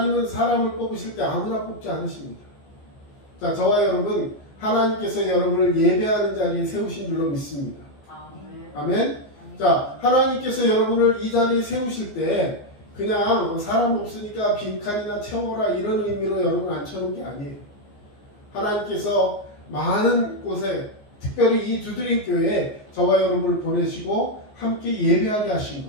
사람을 뽑으실 때 아무나 뽑지 않으십니다. 자, 저와 여러분, 하나님께서 여러분을 예배하는 자리에 세우신 줄로 믿습니다. 아멘. 자, 하나님께서 여러분을 이 자리에 세우실 때 그냥 사람 없으니까 빈칸이나 채워라 이런 의미로 여러분 앉혀놓은 게 아니에요. 하나님께서 많은 곳에, 특별히 이 두드림 교회에 저와 여러분을 보내시고 함께 예배하게 하신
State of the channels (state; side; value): late; right; 14 ms